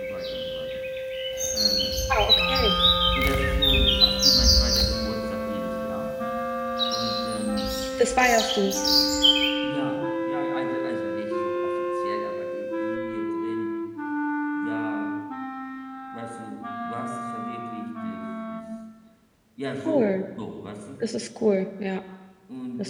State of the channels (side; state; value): both; identical; correlation 1.00